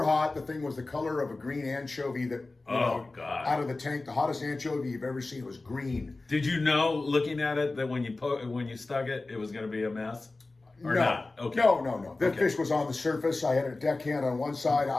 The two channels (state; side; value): quieter; right; 3.3 dB